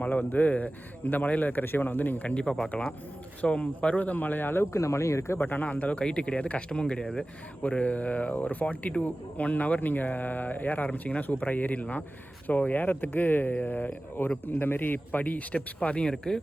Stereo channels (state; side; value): normal; both; correlation 0.97